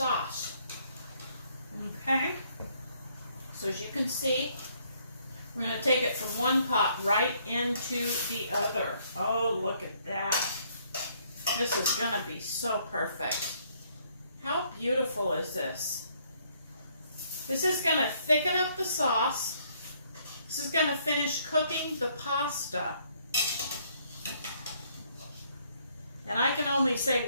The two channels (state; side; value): inverted; both; correlation -0.67